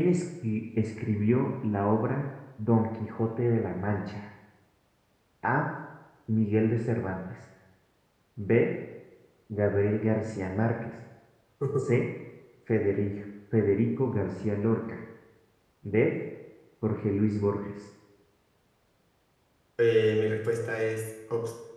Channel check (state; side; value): identical; both; correlation 1.00